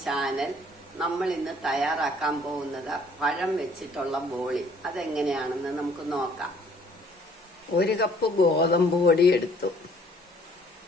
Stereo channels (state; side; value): normal; both; correlation 0.59